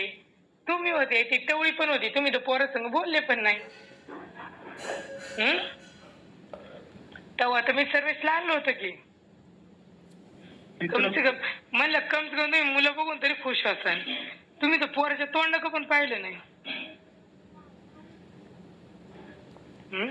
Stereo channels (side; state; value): both; identical; correlation 1.00